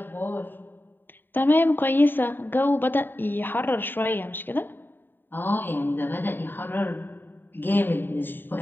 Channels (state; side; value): late; right; 0.094 ms